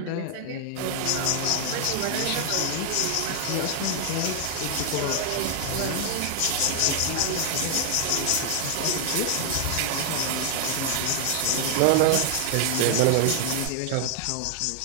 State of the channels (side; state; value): both; different; correlation 0.00